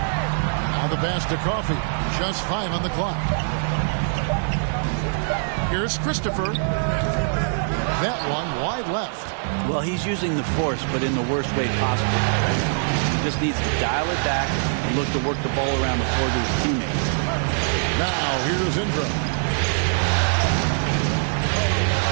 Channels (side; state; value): left; silent; digital silence